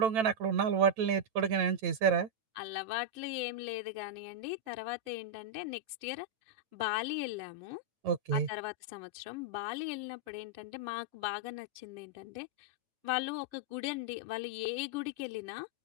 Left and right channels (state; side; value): late; left; 9.1 ms